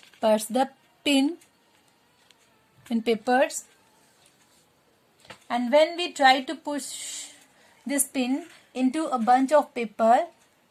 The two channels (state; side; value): identical; both; correlation 1.00